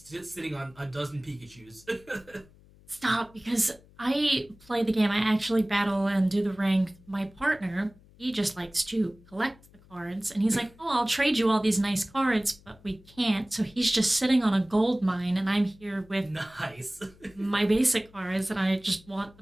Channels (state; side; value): noise; left; hum, 26 dB below the sound